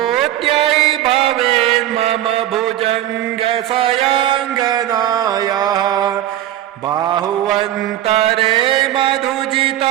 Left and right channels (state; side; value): quieter; left; 13.0 dB